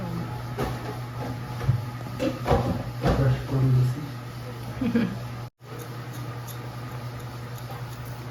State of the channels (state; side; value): identical; both; correlation 1.00